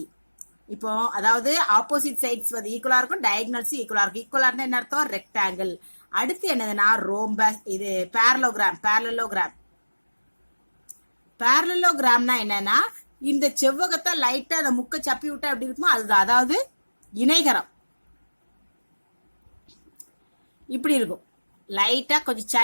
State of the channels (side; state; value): both; inverted; correlation -1.00